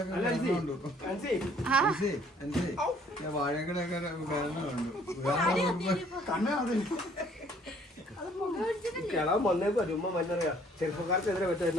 അല്ല അൻസി, അൻസി ഞാൻ വാഴക്കടൊക്കെ കണ്ടു കണ്ണ് അതിൽ കിളാൻ വന്നേക്കോ ചുമ്മാ മഞ്ഞറിയാ ചെറുപ്പക്കാർക്കെതിരെ പറ്റാ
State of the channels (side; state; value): both; normal; correlation 0.60